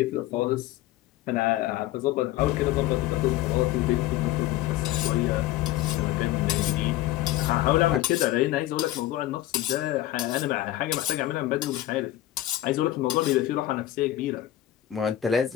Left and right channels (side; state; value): right; quieter; 14.6 dB